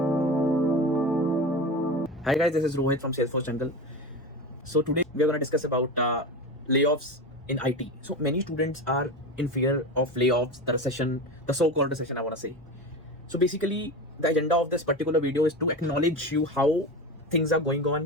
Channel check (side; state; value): both; normal; correlation 0.25